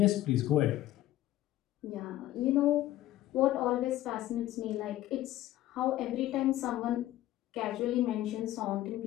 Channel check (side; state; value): right; quieter; 14.4 dB